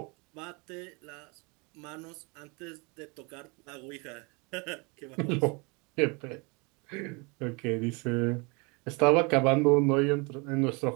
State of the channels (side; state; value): left; quieter; 29.8 dB